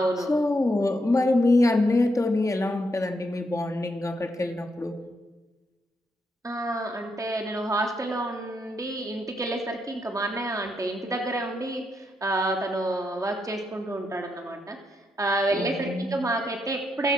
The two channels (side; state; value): both; normal; correlation 0.80